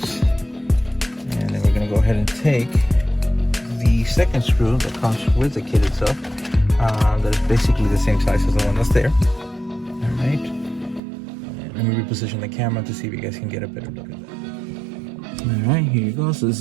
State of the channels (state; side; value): drops out; left; at 11.0 s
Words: And then we're gonna go ahead and take the second screw that comes with the kit itself. That is basically the same size as the one that's there. All right. And let me reposition the camera to see if you guys can get a better look at that. All right, here you go. So this